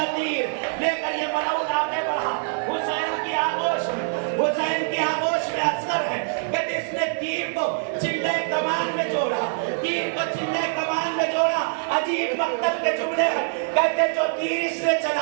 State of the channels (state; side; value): silent; left; digital silence